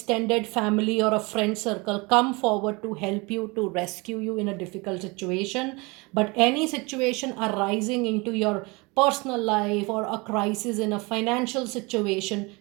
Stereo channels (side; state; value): left; quieter; 26.4 dB